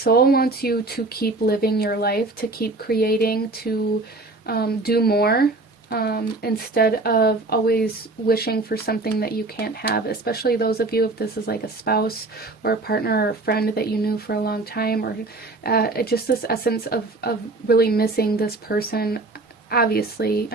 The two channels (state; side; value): quieter; left; 3.1 dB